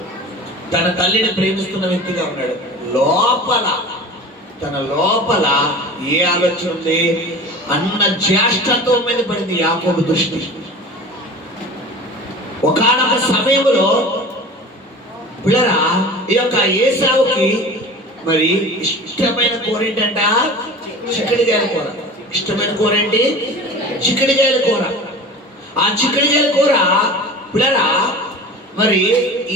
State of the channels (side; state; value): both; normal; correlation 0.38